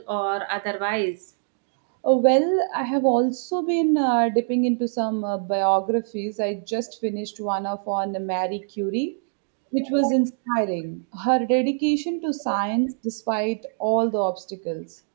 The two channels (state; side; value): silent; left; digital silence